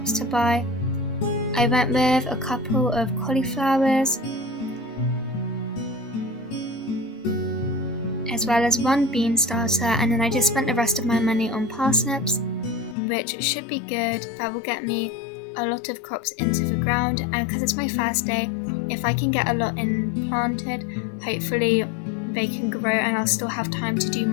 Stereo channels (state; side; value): drops out; right; at 13.0 s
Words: to buy. I went with a couple of cauliflowers, as well as one bean starter, and then I just spent the rest of my money on parsnips, which should be good. That will get me a lot of crops into the ground, and because it's my first day, if I can get a lot in planted, hopefully they can grow and I'll still have time to do